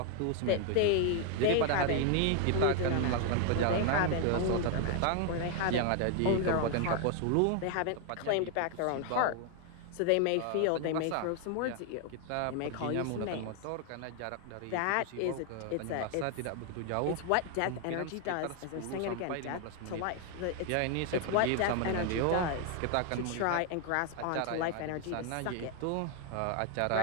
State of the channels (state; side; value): different; both; correlation 0.00